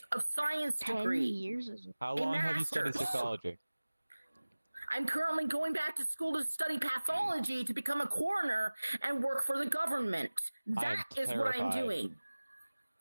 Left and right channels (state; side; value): inverted; both; correlation -1.00